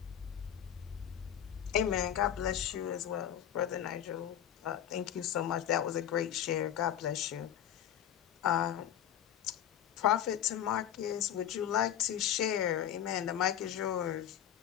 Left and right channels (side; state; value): right; quieter; 10.4 dB